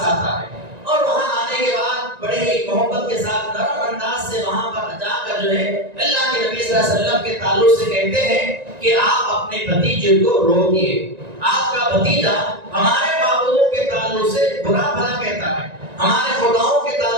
آتا ہے، اور وہاں آنے کے بعد بڑے ہی محبت کے ساتھ نرم انداز سے وہاں پر جا کر جو ہے اللہ کے نبی صلی اللہ علیہ وسلم کے تعلق سے کہتے ہیں کہ آپ اپنے بھتیجے کو روکیے، آپ کا بھتیجا ہمارے معبودوں کے تعلق سے برا بھلا کہتا ہے، ہمارے خداؤں کے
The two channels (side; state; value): left; late; 1.9 ms